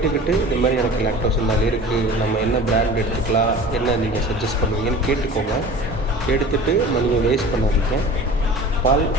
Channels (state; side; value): normal; both; correlation 0.39